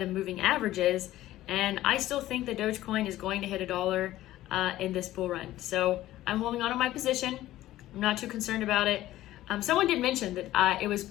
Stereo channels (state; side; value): quieter; right; 14.9 dB